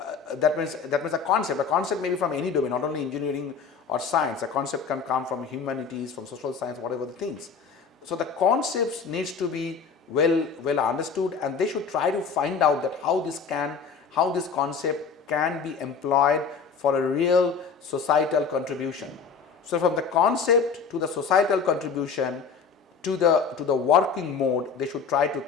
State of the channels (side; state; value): right; quieter; 5.7 dB